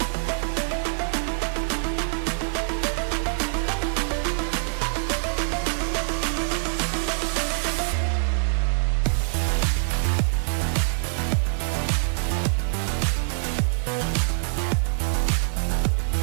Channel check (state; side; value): silent; left; digital silence